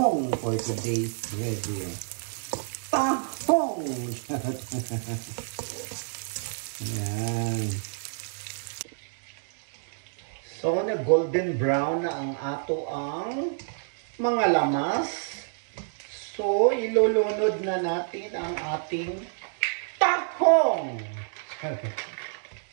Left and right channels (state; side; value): silent; left; digital silence